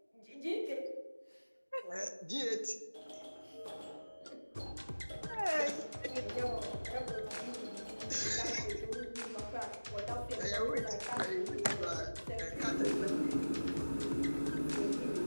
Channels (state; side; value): inverted; both; correlation -1.00